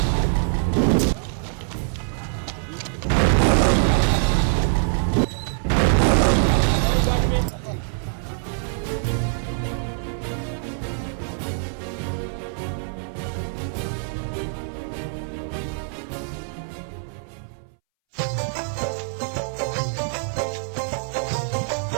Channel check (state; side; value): silent; left; 63 dB below the other